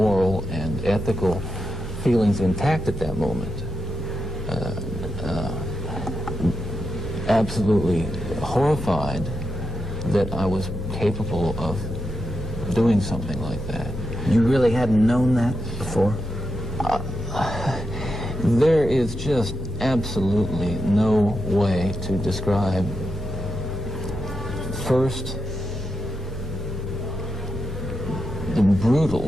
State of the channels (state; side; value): normal; both; correlation 0.86